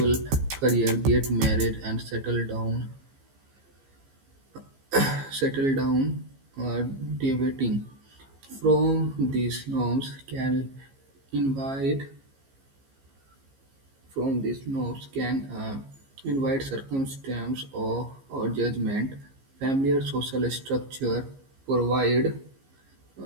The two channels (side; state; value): left; late; 15 ms